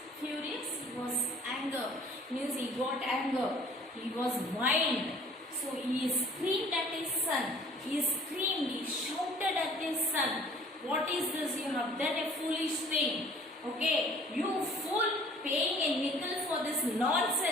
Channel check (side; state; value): both; normal; correlation 0.53